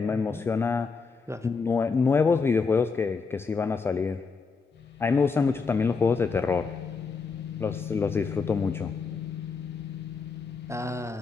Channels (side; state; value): right; quieter; 4.8 dB